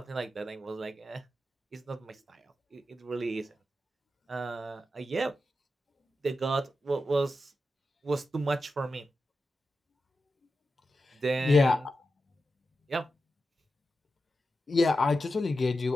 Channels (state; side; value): normal; both; correlation 0.90